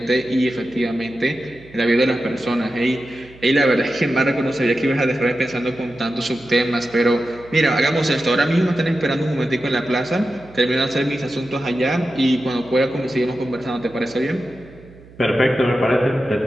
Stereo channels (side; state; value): right; noise; hum, 22 dB below the sound